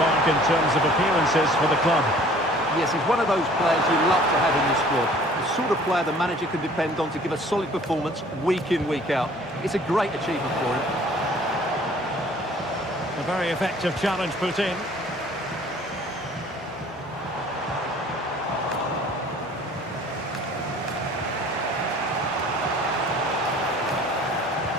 in terms of appearances for the club. Yes, he's one of those players you love to have in your squad. The sort of player the manager can depend on to give a solid performance week in, week out. It's a great achievement for him. A very effective challenge put in.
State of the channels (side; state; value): both; normal; correlation 0.52